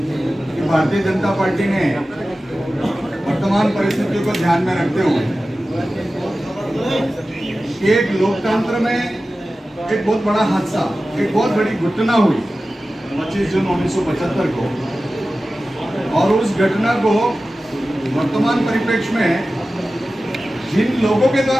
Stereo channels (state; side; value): normal; both; correlation 0.95